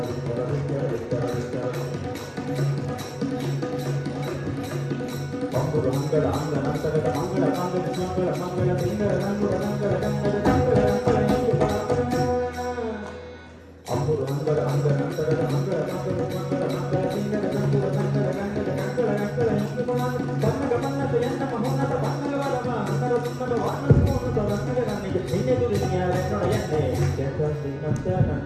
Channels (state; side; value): identical; both; correlation 1.00